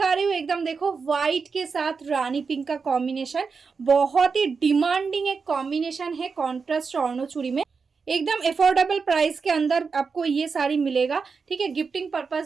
रही हूँ एकदम देखो व्हाइट के साथ रानी पिंक का कॉम्बिनेशन, बहुत ही डिमांडिंग एक कॉम्बिनेशन है कॉन्ट्रास्ट स्वर्णो चूड़ी में। एकदम अफोर्डेबल प्राइस के अंदर आपको ये साड़ी मिलेगा। ठीक है, गिफ्टिंग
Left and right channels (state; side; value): quieter; left; 5.1 dB